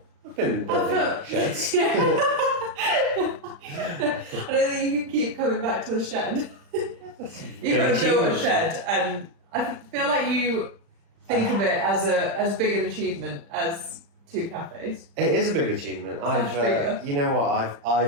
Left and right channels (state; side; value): late; left; 35 ms